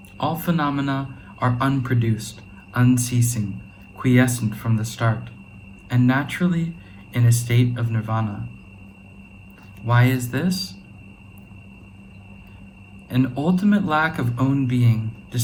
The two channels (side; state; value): both; identical; correlation 1.00